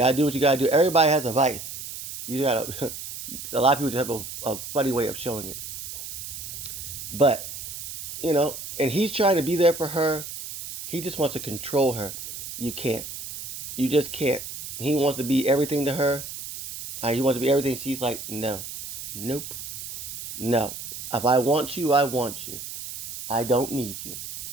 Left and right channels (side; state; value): right; noise; hiss, 9 dB below the sound